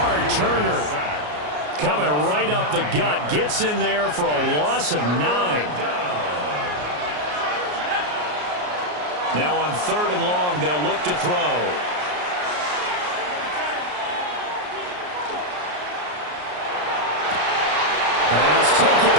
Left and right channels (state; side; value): late; left; 33 ms